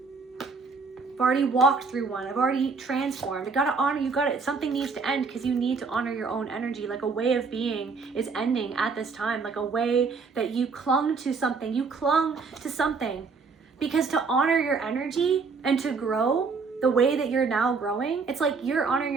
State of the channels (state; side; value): quieter; left; 4.7 dB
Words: I've already walked through one. I've already transformed. I gotta honor, something needs to end because you need to honor your own energy. Like a way of being is ending at this time. Like a way that you clung to something. You clung to something. Because to honor your energy and to grow the way that you're now growing, it's like you're honoring